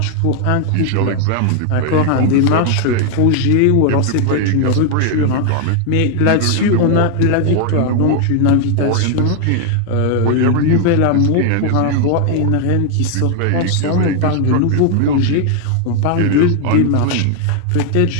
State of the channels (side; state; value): both; different; correlation 0.00